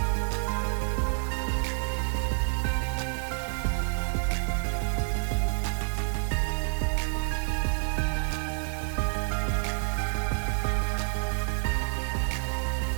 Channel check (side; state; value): left; silent; 59 dB below the other